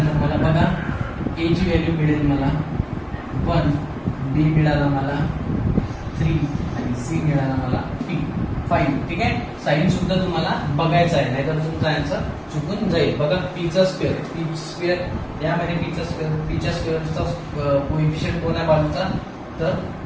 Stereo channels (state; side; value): identical; both; correlation 1.00